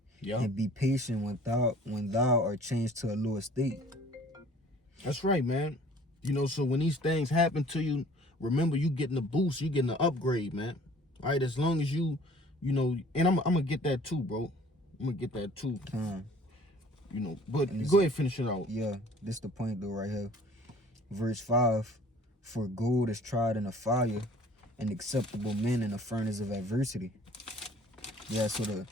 Yeah. and be patient when thou art changed to a lower state." That's right, man. You know, so when these things happen to you, remember you getting a boost, you getting an upgrade, man. All right, as long as you know, and I'm gonna get that too, bro. I'm gonna get that too. You know, but go ahead, finish it out. Yeah, this the point though right here. Verse 5, "For gold is tried in a fire, and acceptable men in a furnace of adversity." Yeah, so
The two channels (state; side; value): normal; both; correlation 0.52